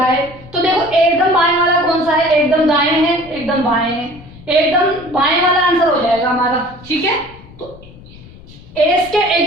है। तो देखो एकदम बाएं वाला कौन सा है, एकदम दाएं है, एकदम बाएं है, एकदम बाएं वाला आंसर हो जाएगा हमारा। ठीक है, तो एस के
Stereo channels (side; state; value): left; noise; rumble, 21 dB below the sound